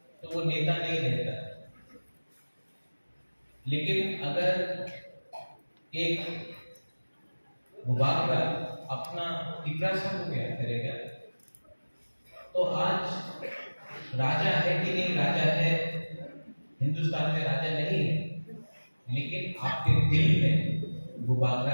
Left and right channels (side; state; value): both; inverted; correlation -1.00